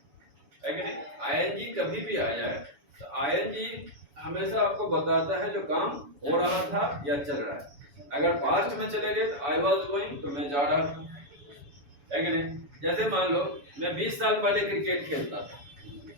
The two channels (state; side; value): late; left; 7.0 ms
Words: है कि नहीं? आईएनजी कभी भी आ जाए तो आईएनजी हमेशा आपको बताता है जो काम हो रहा था या चल रहा है। अगर पास्ट में चले गए तो आई वाज गोइंग, तो मैं जा रहा था, है कि नहीं? जैसे मान लो मैं 20 साल पहले क्रिकेट खेलता था,